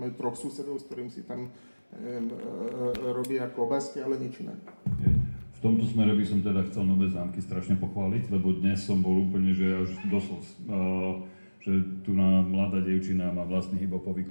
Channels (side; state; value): both; inverted; correlation -1.00